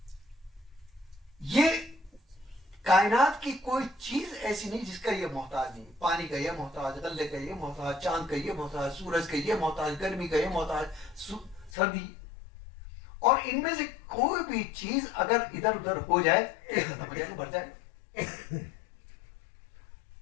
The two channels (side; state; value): right; drops out; at 11.7 s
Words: یہ کائنات کی کوئی چیز ایسی نہیں جس کا یہ محتاج نہیں. پانی کا یہ محتاج, غلے کا یہ محتاج, چاند کا یہ محتاج, سورج کا یہ محتاج, گرمی کا یہ محتاج, سردی. اور ان میں سے کوئی بھی چیز اگر ادھر ادھر ہو جائے تو ختم ہو جائے گا, بھر جائے گا.